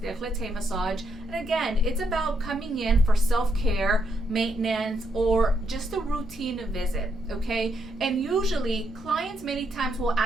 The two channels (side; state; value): both; normal; correlation 0.77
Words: massage. And again, it's about coming in for self-care, maintenance, or just a routine visit, okay? And usually clients many times will